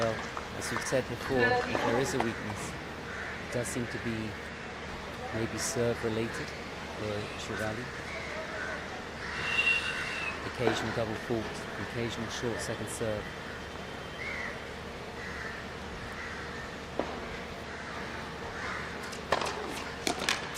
as we've said before, if there is a weakness, it does seem to be maybe serve related for SHRIVALLI. The occasional double fault, the occasional short second serve.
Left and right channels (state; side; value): identical; both; correlation 1.00